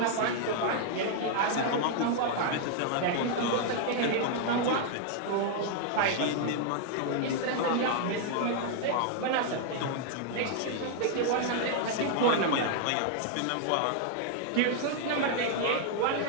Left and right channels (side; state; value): both; different; correlation 0.00